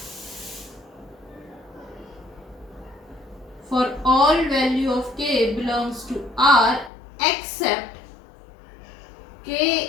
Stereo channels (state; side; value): drops out; right; at 6.9 s